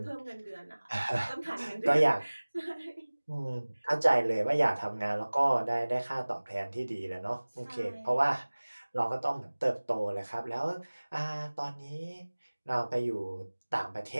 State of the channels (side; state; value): both; inverted; correlation -1.00